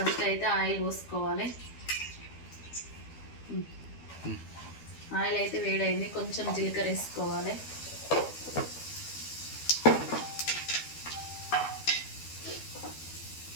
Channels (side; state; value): right; late; 12 ms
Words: అయితే ఆయిల్ పోసుకోవాలి. ఆయిల్ అయితే వేడైంది, కొంచెం జీలకర్ర వేసుకోవాలి.